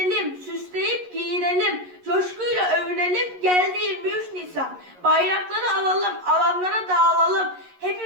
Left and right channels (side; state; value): left; late; 11 ms